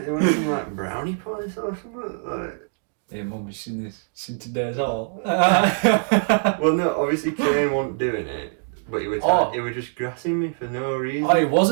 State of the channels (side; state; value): left; silent; digital silence